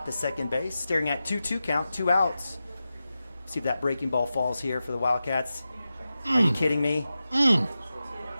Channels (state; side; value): inverted; both; correlation -0.93